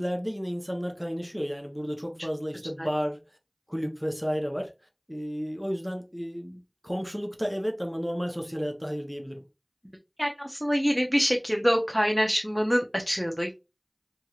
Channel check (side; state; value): both; identical; correlation 1.00